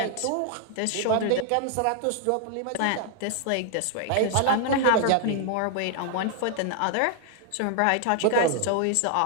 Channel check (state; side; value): different; both; correlation 0.00